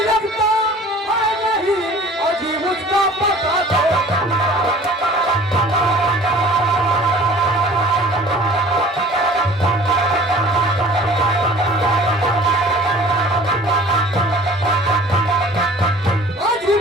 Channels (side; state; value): both; normal; correlation 0.47